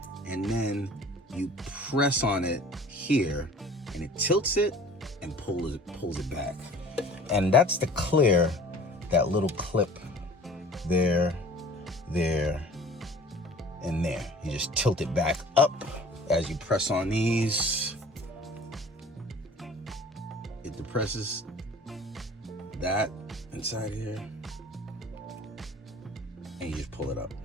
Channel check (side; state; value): both; normal; correlation 0.46